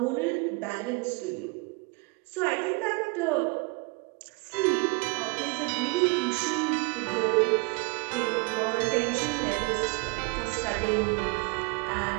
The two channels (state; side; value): quieter; left; 29.3 dB